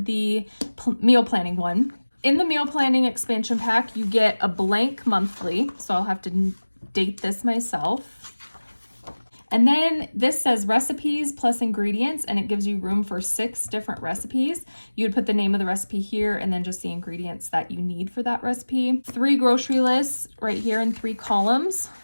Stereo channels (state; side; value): inverted; both; correlation -1.00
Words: the meal planning one. In the meal planning expansion pack, you get a blank monthly. So I'll have to date this myself. And then this says recipes plus ingredients, and it gives you room for 6 different recipes. You would put the name of the recipe here and then just the ingredients that you need for that recipe. 3 grocery lists right here in 3 columns.